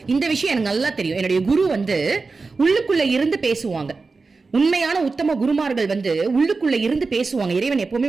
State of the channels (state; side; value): quieter; left; 4.1 dB